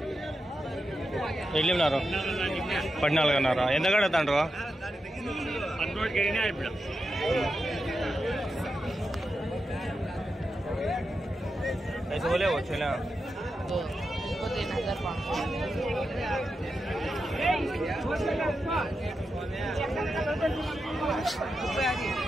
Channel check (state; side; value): normal; both; correlation 0.88